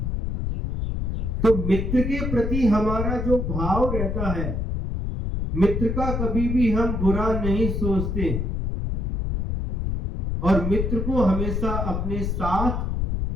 तो मित्र के प्रति हमारा जो भाव रहता है, मित्र का कभी भी हम बुरा नहीं सोचते और मित्र को हमेशा अपने साथ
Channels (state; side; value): noise; left; rumble, 1 dB below the sound